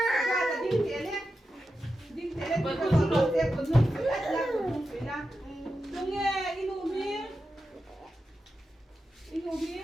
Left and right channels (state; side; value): normal; both; correlation 0.90